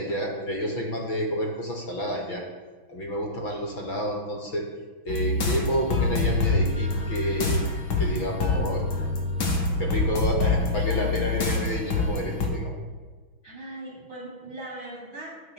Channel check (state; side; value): late; right; 6.1 ms